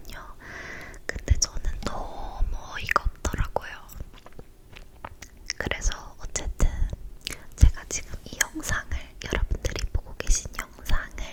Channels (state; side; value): identical; both; correlation 1.00